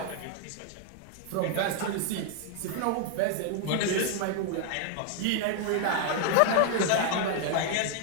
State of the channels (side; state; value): both; different; correlation 0.00